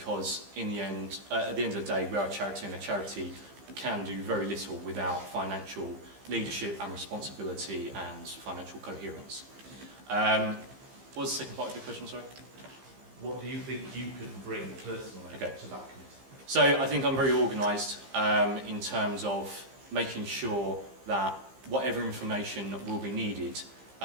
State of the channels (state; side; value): late; left; 15 ms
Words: in the end, at the end of the day, we are a charity, and a charity can do very little without financial leadership and responsibility and financial coherence. What was the second part of your question, sorry? What do you think you can bring personally to that committee? So I think I'm very organised in terms of making sure that whatever information will be needed